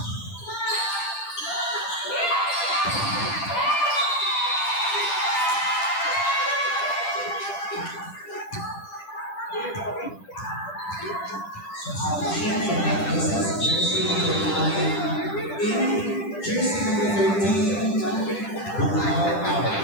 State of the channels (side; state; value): right; late; 10 ms